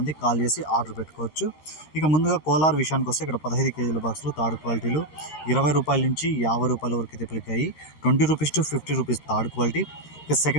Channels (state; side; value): late; right; 13 ms